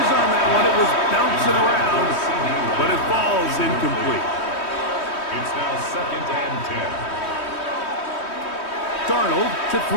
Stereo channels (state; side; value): late; right; 3.2 ms